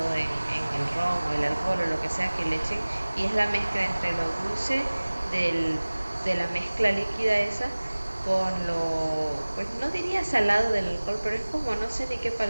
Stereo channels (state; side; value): inverted; both; correlation -1.00